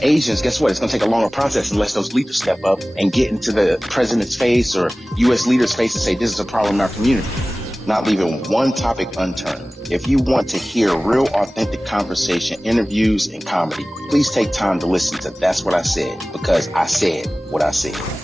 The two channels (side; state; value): both; normal; correlation 0.98